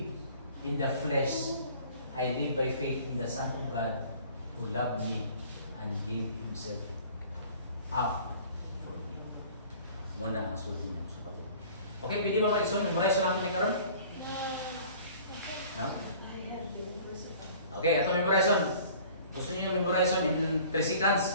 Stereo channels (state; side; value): inverted; both; correlation -0.49